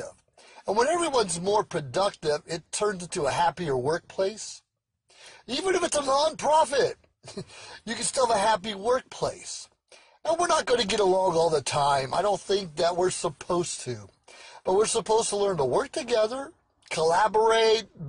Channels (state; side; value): identical; both; correlation 1.00